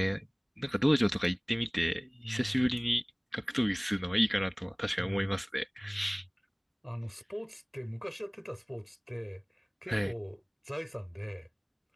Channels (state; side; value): identical; both; correlation 1.00